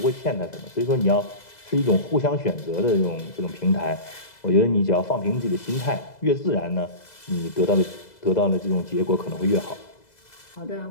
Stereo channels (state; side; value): late; right; 2.0 ms